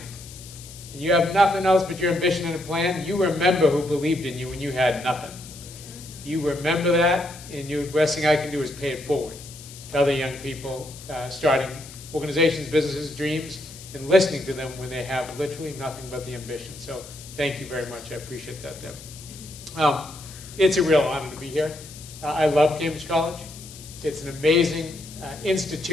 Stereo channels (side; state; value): left; noise; hiss, 16 dB below the sound